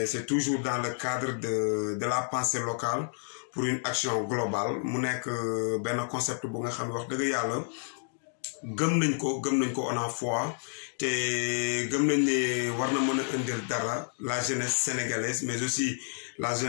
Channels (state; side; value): silent; right; digital silence